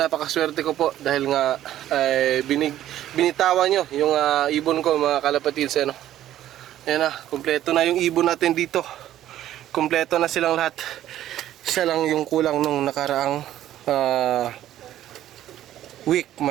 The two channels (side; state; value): left; quieter; 12.6 dB